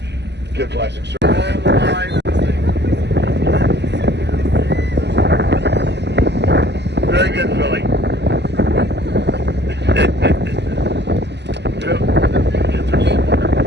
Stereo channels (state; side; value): late; left; 0.50 ms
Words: good plastic surgery. All the line. Very good, Philly.